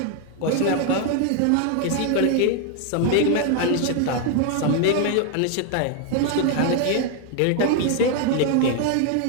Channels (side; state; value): both; different; correlation 0.01